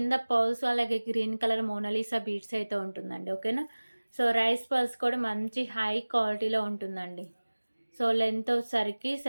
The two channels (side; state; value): both; inverted; correlation -1.00